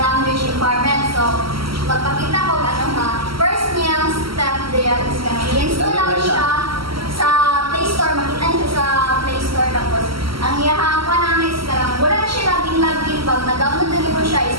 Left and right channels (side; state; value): left; late; 0.75 ms